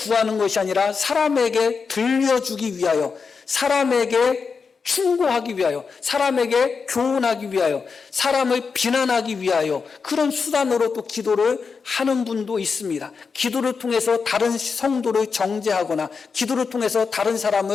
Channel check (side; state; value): right; quieter; 5.3 dB